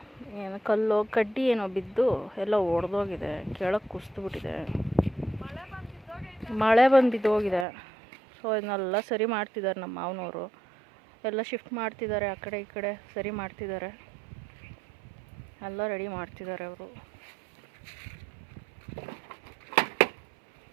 ಏನು ಕಲ್ಲು ಕಡ್ಡಿ ಏನೋ ಬಿದ್ದು ಎಲ್ಲ ಒಡೆದೋಗಿದೆ, ಕೆಳಗೆ ಕುಸಿದ್ಬಿಟ್ಟಿದೆ. ಮಳೆ ಬಂದು ಬಿದ್ದೋಗಿದೆ. ಸೊ ಇದನ್ನೆಲ್ಲ ಸರಿ ಮಾಡ್ತಿದ್ದಾರೆ ನಮ್ಮ ಮಾವನವರು. ಎಲ್ಲ ಶಿಫ್ಟ್ ಮಾಡ್ತಿದ್ದಾರೆ, ಆ ಕಡೆ ಈ ಕಡೆ ಸರಿ ಮಾಡ್ತಿದ್ದಾರೆ, ಎಲ್ಲ ರೆಡಿ ಮಾಡ್ತಿದ್ದಾರೆ ಅವರು.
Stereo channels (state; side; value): drops out; left; at 7.7 s